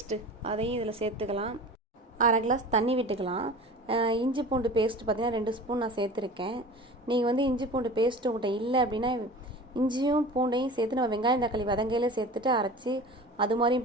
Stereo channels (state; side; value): normal; both; correlation 0.37